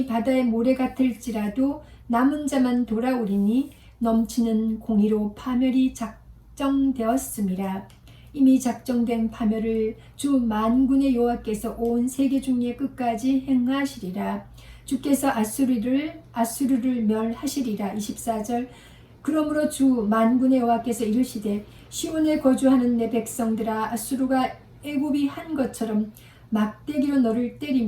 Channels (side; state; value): both; identical; correlation 1.00